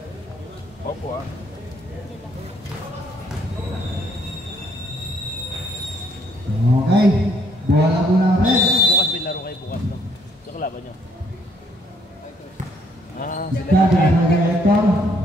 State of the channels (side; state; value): both; normal; correlation 0.67